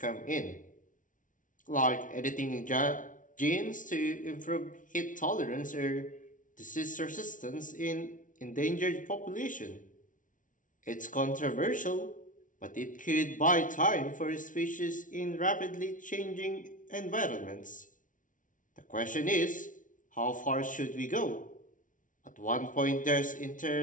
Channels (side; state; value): right; late; 0.38 ms